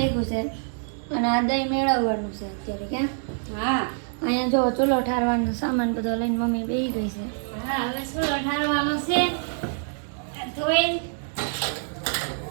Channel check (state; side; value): silent; left; 61 dB below the other